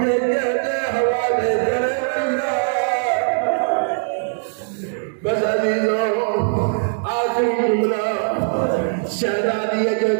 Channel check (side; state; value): left; silent; digital silence